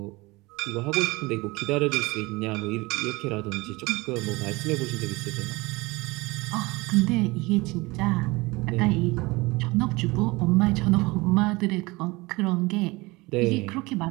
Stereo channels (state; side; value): quieter; left; 23.1 dB